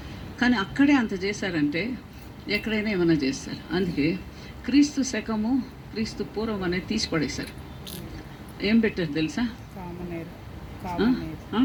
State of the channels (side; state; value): both; identical; correlation 1.00